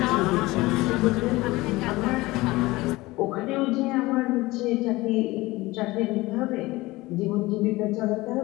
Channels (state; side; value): quieter; right; 20.2 dB